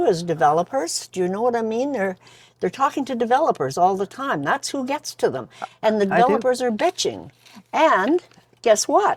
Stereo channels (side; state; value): both; identical; correlation 1.00